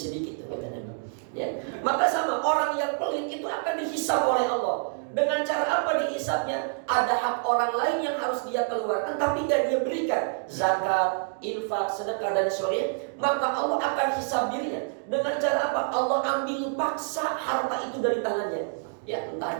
kata Nabi. Ya maka sama orang yang pelit itu akan dihisab oleh Allah. Dengan cara apa dihisabnya? Ada hak orang lain yang harus dia keluarkan tapi gak dia berikan, zakat, infak, sedekah dan sebagainya. Maka Allah akan hisab dirinya. Dengan cara apa? Allah ambil paksa harta itu dari tangannya. Ya entah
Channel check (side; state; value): left; silent; 60 dB below the other